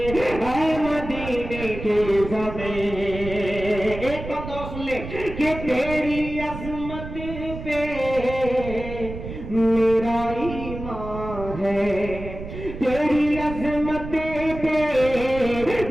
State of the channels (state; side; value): noise; right; rumble, 10 dB below the sound